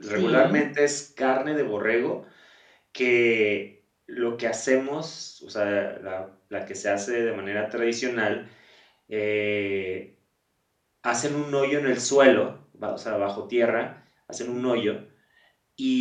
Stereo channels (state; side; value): identical; both; correlation 1.00